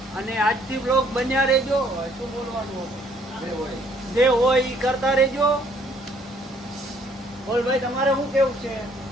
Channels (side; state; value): both; normal; correlation 0.63